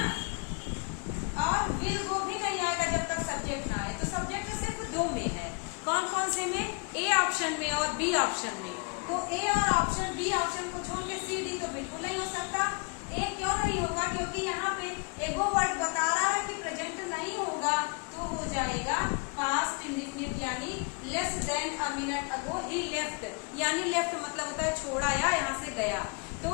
और विल गो भी नहीं आएगा जब तक सब्जेक्ट ना आए, तो सब्जेक्ट सिर्फ 2 में है। कौन कौन से में? ए ऑप्शन में और बी ऑप्शन में। तो ए और ऑप्शन बी ऑप्शन को छोड़ के सी डी तो बिल्कुल नहीं हो सकता। ए क्यों नहीं होगा? क्योंकि यहाँ पे एगो वर्ड बता रहा है कि प्रेजेंट नहीं होगा, तो हो जाएगा पास्ट इंडेफिनिट, यानी less than a minute ago he left, यानी लेफ्ट मतलब होता है छोड़ा या यहाँ से गया,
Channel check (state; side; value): quieter; right; 33.1 dB